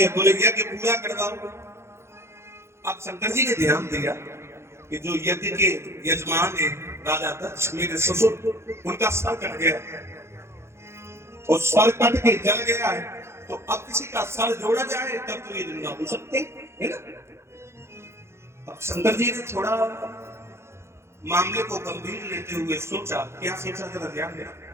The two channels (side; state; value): left; late; 0.13 ms